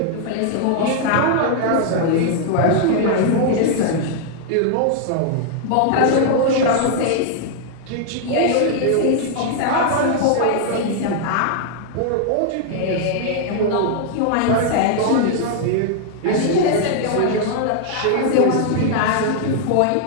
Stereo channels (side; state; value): both; different; correlation -0.01